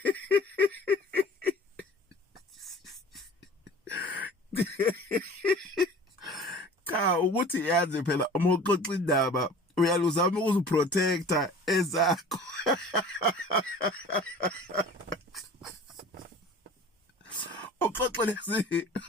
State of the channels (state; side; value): normal; both; correlation 0.43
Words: Cha ukuthi yazi phela uma uxoxa indaba uyaluzama ukuziprotecta ezakho. Uxoxe lezi